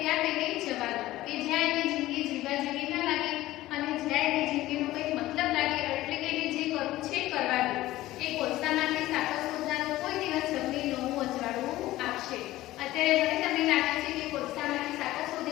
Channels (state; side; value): quieter; right; 16.3 dB